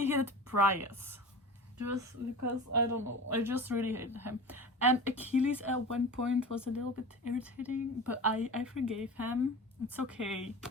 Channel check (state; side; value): normal; both; correlation 0.33